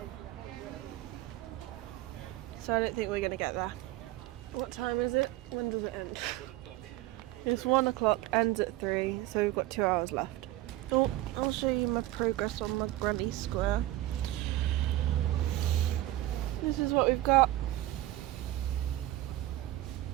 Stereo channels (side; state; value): left; quieter; 15.9 dB